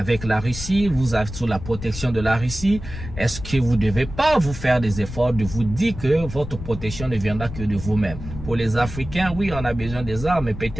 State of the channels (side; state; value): left; noise; rumble, 10 dB below the sound